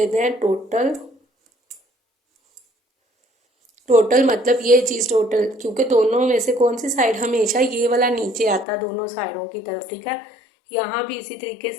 हैं टोटल। टोटल मतलब ये चीज़ टोटल, क्योंकि दोनों में से कौन सी साइड हमेशा ये वाला नीचे आता है दोनों साइडों की तरफ, ठीक है। यहाँ भी इसी तरीके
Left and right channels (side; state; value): right; drops out; at 8.7 s